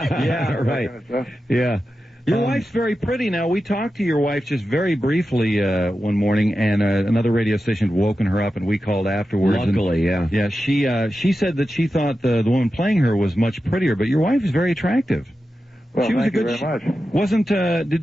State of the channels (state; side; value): normal; both; correlation 0.91